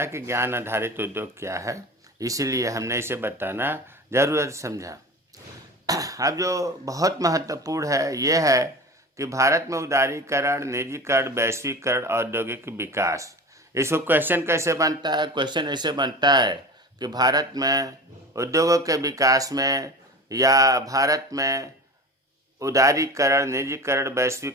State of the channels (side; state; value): both; normal; correlation 0.33